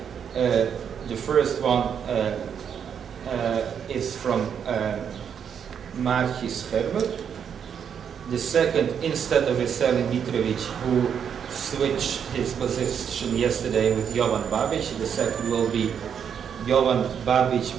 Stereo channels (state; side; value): quieter; left; 7.8 dB